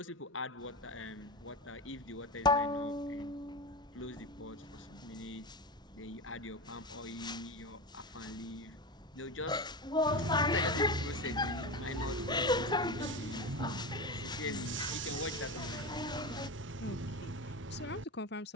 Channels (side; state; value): both; normal; correlation 0.21